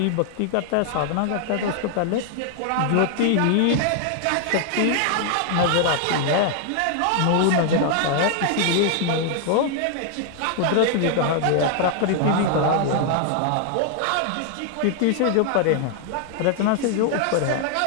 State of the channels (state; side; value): different; both; correlation 0.00